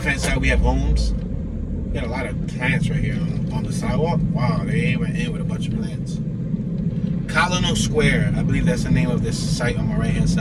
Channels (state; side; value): identical; both; correlation 1.00